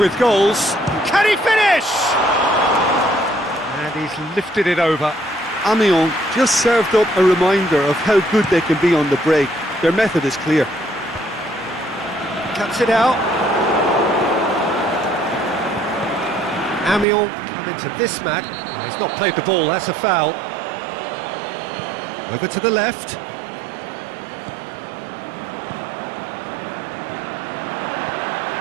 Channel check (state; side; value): drops out; left; at 17.1 s